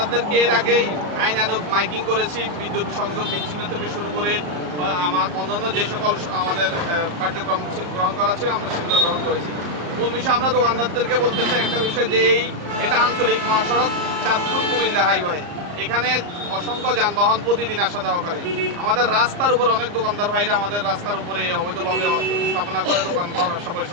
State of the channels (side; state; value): left; late; 34 ms